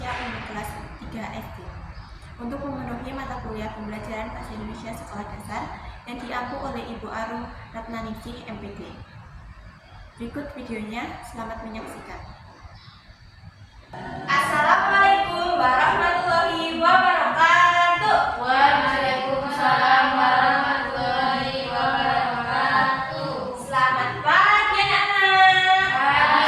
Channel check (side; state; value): both; identical; correlation 1.00